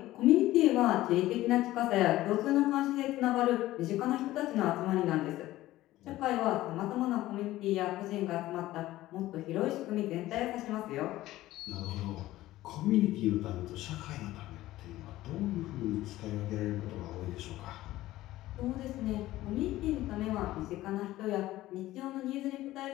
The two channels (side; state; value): right; quieter; 15.9 dB